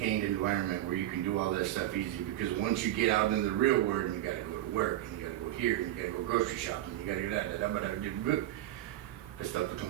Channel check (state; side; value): quieter; left; 13.8 dB